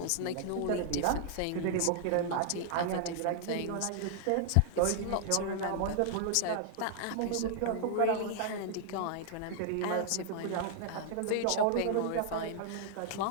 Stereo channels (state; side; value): different; both; correlation -0.01